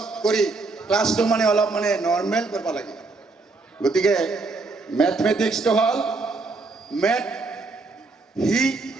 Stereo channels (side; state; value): left; quieter; 3.7 dB